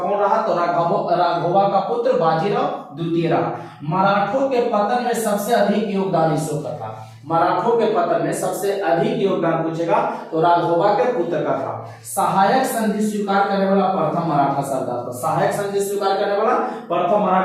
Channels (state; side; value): identical; both; correlation 1.00